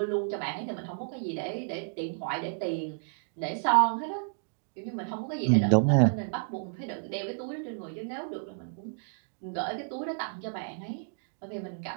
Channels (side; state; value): left; silent; digital silence